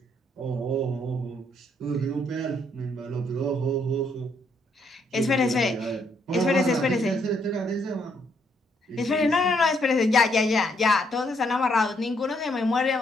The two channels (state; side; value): normal; both; correlation 0.72